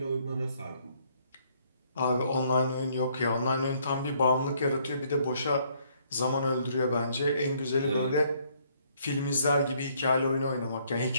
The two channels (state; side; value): inverted; both; correlation -0.66